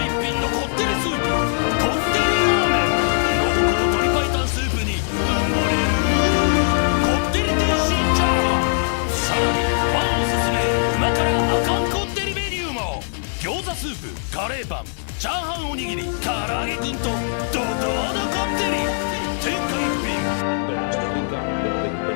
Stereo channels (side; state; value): right; silent; digital silence